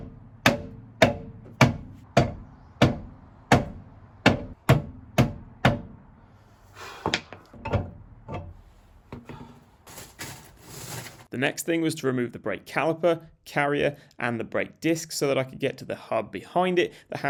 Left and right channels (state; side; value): identical; both; correlation 1.00